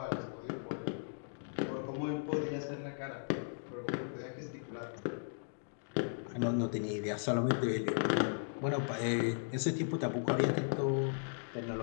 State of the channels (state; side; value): silent; right; digital silence